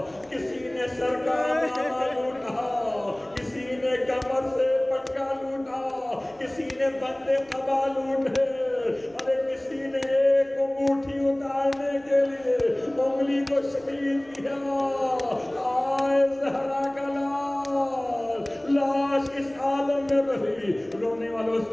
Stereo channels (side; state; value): right; noise; rumble, 29 dB below the sound